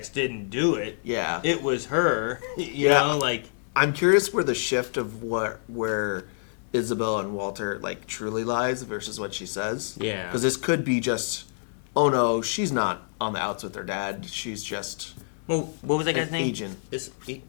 didn't do it? Yeah, it was her. You know, like I'm curious where the shift of where Isabel and Walter like truly lies versus what she says. Yeah, because this could be just, oh no, she's not on the outs with her dad. She's just what was that guy's name? Agent.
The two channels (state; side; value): silent; right; digital silence